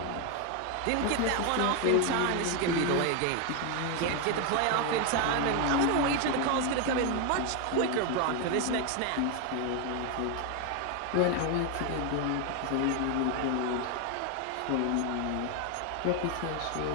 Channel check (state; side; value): different; both; correlation 0.01